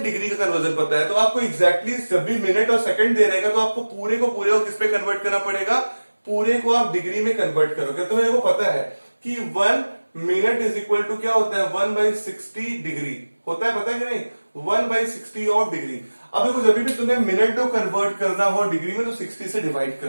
का कन्वर्जन पता है, तो आपको एग्जैक्टली जब भी मिनट और सेकंड दे रहेगा तो आपको पूरे को किस पे कन्वर्ट करना पड़ेगा, पूरे को आप डिग्री में कन्वर्ट करोगे। तो मेरे को पता है कि 1 मिनट इज इक्वल टू क्या होता है 1/60 डिग्री होता है, पता है कि नहीं 1/60 ऑफ डिग्री। अब देखो जब भी तुम्हें मिनट को कन्वर्ट करना हो डिग्री में तो 60 से डिवाइड कर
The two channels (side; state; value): both; inverted; correlation -1.00